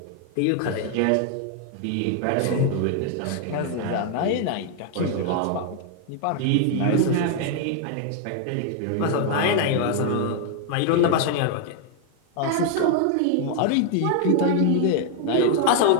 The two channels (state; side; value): different; both; correlation 0.00